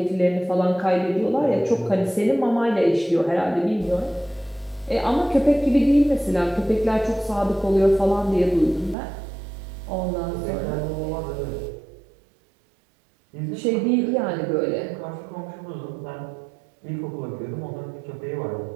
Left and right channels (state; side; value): drops out; left; at 9.0 s